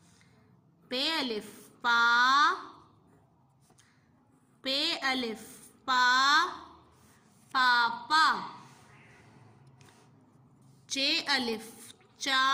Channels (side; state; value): both; identical; correlation 1.00